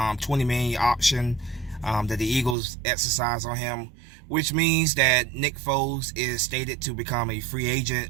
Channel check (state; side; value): drops out; left; at 2.6 s